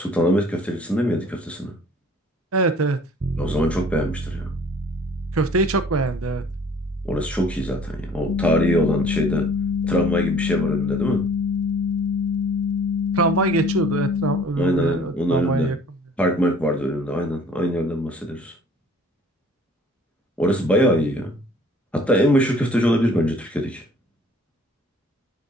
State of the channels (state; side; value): normal; both; correlation 0.53